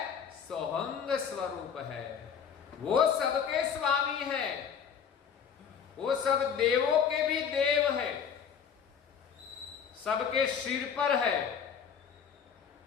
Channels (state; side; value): quieter; right; 7.3 dB